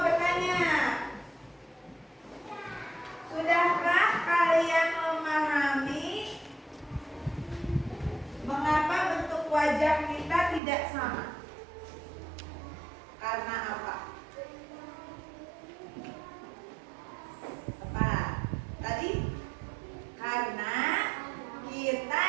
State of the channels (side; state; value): left; drops out; at 10.6 s